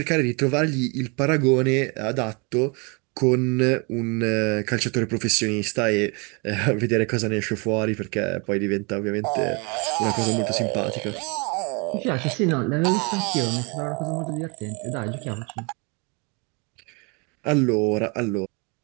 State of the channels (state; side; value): quieter; left; 31.3 dB